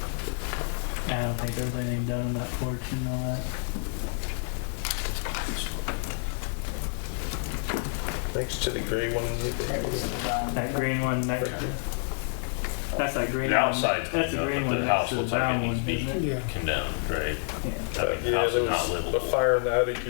I don't think there's anything done on that porch and all that. Next to the gray one. That green one next to, that's that green The one. outside's That's the cleaned up, green but one the next house to the looks like it brown needs one, to be isn't it? Yeah. condemned, right? Yeah. I mean, the Yeah, house there is not was a livable. fire in the attic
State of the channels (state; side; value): silent; right; 59 dB below the other